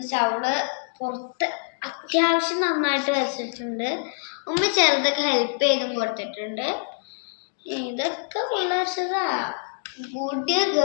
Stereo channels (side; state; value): right; silent; digital silence